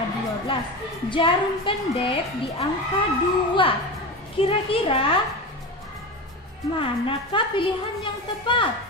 12, jarum pendek di angka 2. Kira-kira manakah pilihan yang tepat?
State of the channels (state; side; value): normal; both; correlation 0.25